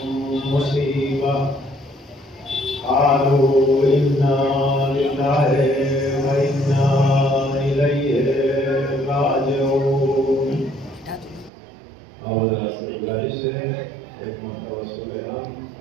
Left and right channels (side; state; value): left; drops out; at 11.5 s